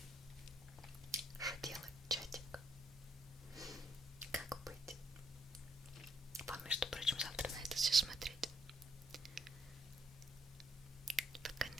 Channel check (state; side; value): normal; both; correlation 0.70